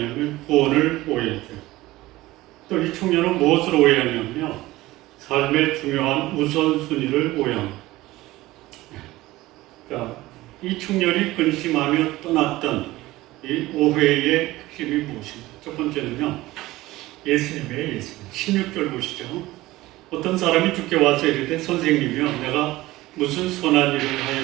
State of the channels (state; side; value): quieter; left; 18.0 dB